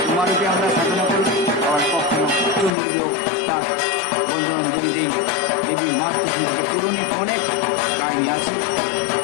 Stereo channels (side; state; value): right; drops out; at 2.7 s